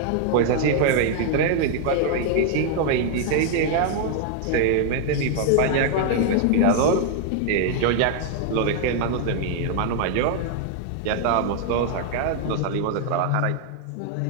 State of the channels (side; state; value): both; different; correlation 0.00